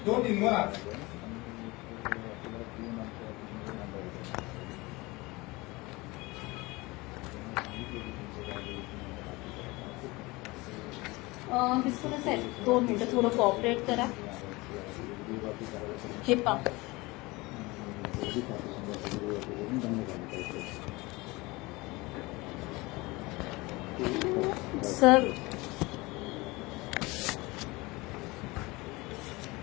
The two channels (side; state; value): right; quieter; 22.9 dB